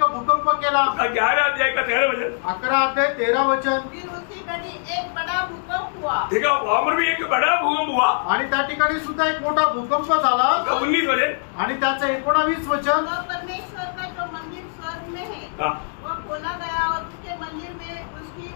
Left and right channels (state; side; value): silent; right; digital silence